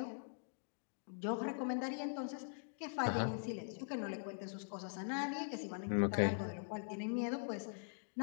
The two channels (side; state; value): right; silent; digital silence